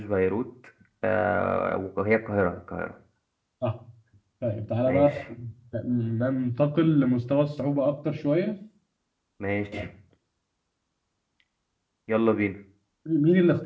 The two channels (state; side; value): identical; both; correlation 1.00